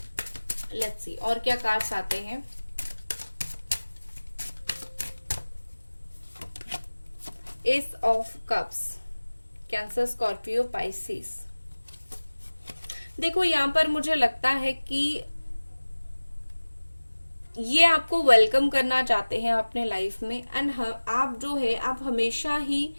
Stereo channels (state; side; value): inverted; both; correlation -1.00